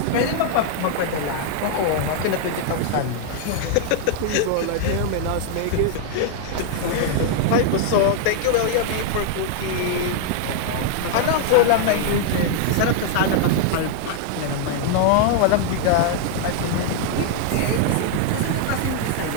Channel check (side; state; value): both; different; correlation 0.00